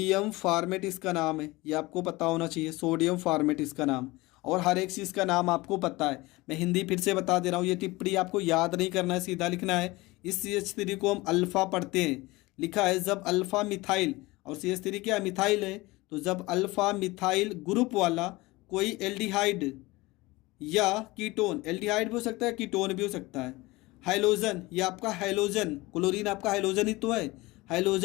फार्मेट इसका नाम है, ये आपको पता होना चाहिए, सोडियम फार्मेट इसका नाम। और हर एक चीज़ का नाम आपको पता है। मैं हिंदी फिर से बता दे रहा हूँ, ये टिप्पणी आपको याद नहीं करना है, सीधा लिखना है। इस CH3 को हम अल्फ़ा पढ़ते हैं। लिखा है जब अल्फ़ा मिथाइल, और CH3 क्या मिथाइल है, तो जब अल्फ़ा मिथाइल ग्रुप वाला कोई एल्डिहाइड या कीटोन, एल्डिहाइड भी हो सकता है, कीटोन भी हो सकता है, हाइलोजन, ये आपका हाइलोजन, क्लोरीन आपका हाइलोजन ही तो है।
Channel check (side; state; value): right; quieter; 21.4 dB